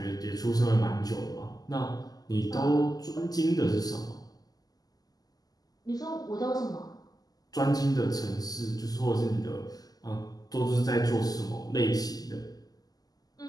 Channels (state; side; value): late; right; 0.18 ms